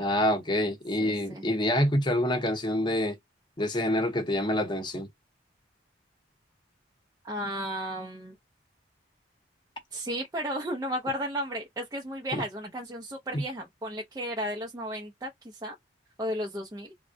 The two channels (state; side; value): normal; both; correlation 0.51